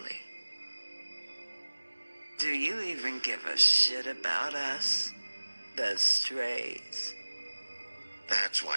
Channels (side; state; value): both; inverted; correlation -1.00